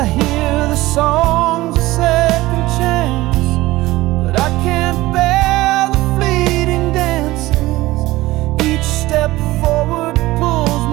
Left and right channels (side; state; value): left; quieter; 18.2 dB